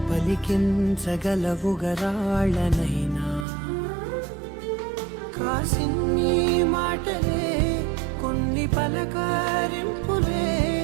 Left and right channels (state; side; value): drops out; left; at 3.5 s